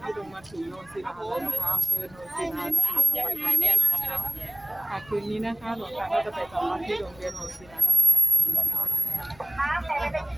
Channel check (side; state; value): left; noise; rumble, 25 dB below the sound